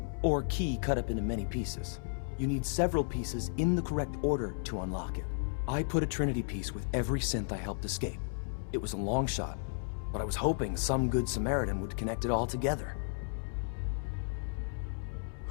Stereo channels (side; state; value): right; silent; 55 dB below the other